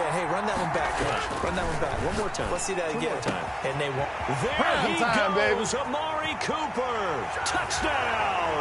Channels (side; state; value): both; identical; correlation 1.00